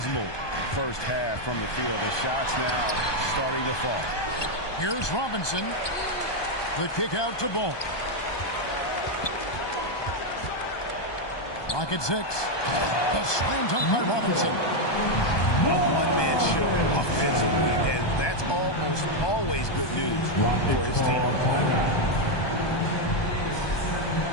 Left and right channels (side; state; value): right; late; 1.2 ms